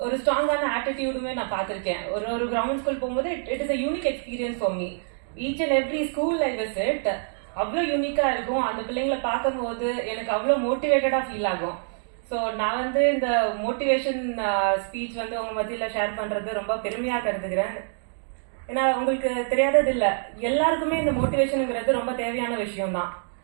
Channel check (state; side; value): silent; left; digital silence